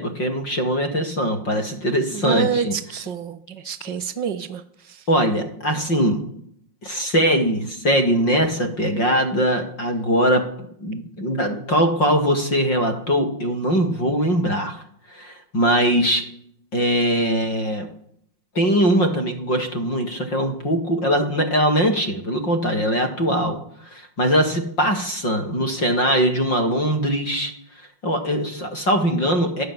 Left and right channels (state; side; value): late; right; 5.6 ms